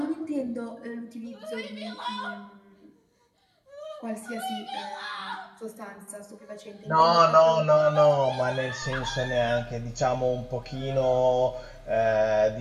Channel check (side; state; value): both; identical; correlation 1.00